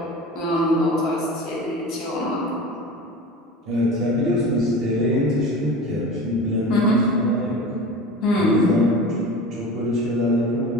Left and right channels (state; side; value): normal; both; correlation 0.33